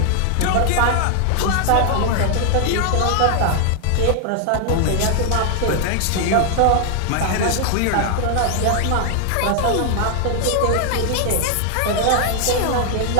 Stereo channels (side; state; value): both; different; correlation 0.00